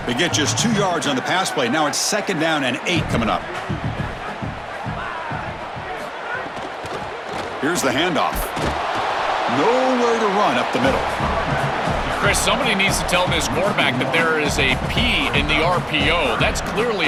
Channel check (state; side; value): identical; both; correlation 1.00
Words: They get just 2 yards on the pass play. Now it's 2nd down and 8 coming up. Here's the handoff. Nowhere to run up the middle. Chris, somebody needs to tell this quarterback that there is a P in the RPO. That's